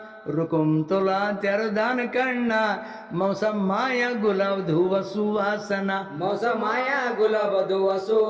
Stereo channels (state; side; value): identical; both; correlation 1.00